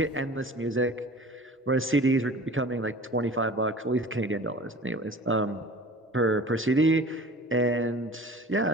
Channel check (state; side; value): normal; both; correlation 0.42